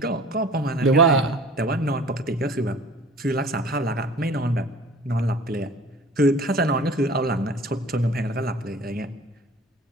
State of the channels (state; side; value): normal; both; correlation 0.46